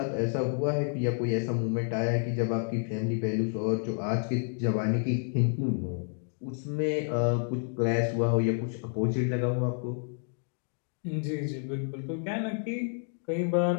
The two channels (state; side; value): silent; right; 58 dB below the other